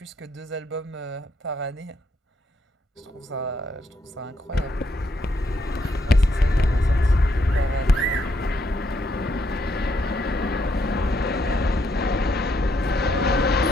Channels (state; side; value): normal; both; correlation 0.75